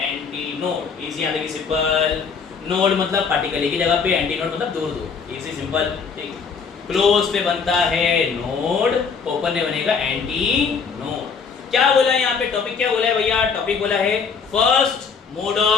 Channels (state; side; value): quieter; right; 5.7 dB